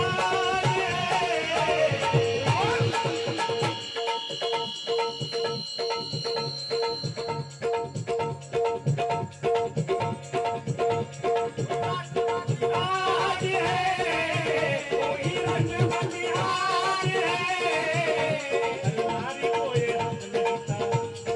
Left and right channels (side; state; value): both; identical; correlation 1.00